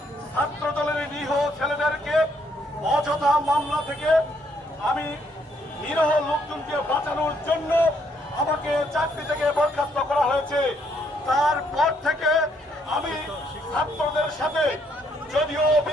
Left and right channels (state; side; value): normal; both; correlation 0.71